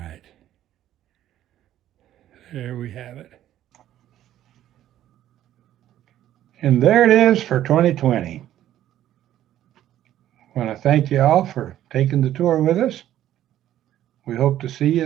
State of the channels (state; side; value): quieter; left; 12.4 dB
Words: There we have it. And there it is for 2020. I want to thank you all for taking the tour with us. We hope to see you